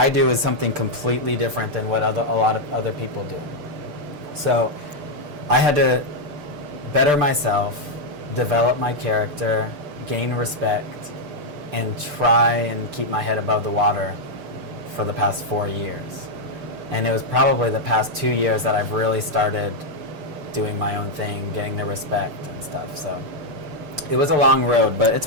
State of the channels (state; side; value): late; left; 6.8 ms